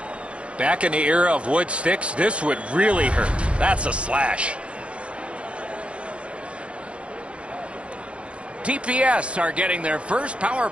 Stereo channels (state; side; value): late; left; 0.060 ms